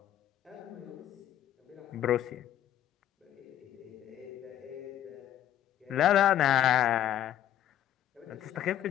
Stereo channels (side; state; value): right; quieter; 11.6 dB